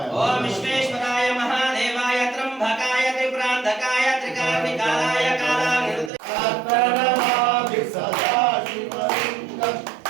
ఓం విశ్వేశ్వరాయ మహాదేవాయ త్రంబకాయ త్రిపురాంధకాయ త్రికాగ్నికాలాయ కాలాగ్నిరుద్రాయ సదాశివలింగం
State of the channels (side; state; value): left; drops out; at 6.1 s